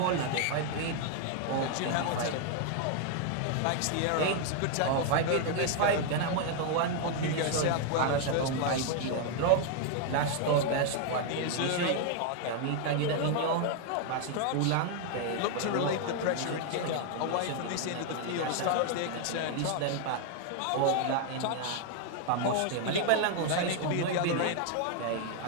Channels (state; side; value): different; both; correlation 0.00